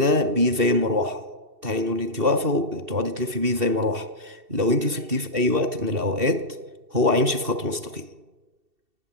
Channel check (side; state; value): left; late; 2.7 ms